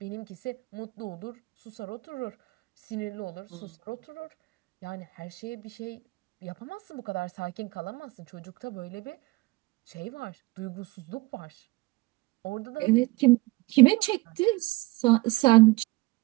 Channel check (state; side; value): quieter; left; 22.7 dB